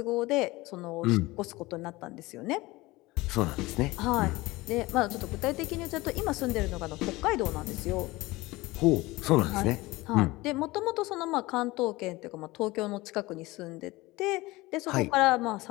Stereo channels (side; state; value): right; quieter; 20.6 dB